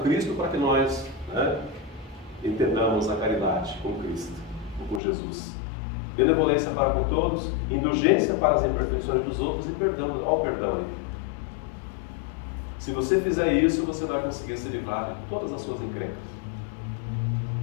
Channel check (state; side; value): drops out; right; at 5.0 s